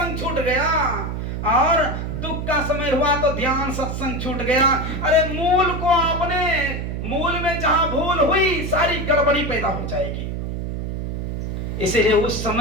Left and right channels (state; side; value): noise; right; hum, 4 dB below the sound